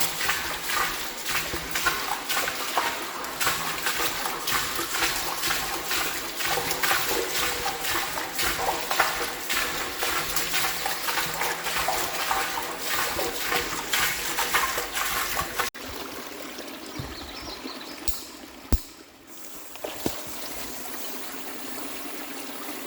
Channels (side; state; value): both; identical; correlation 1.00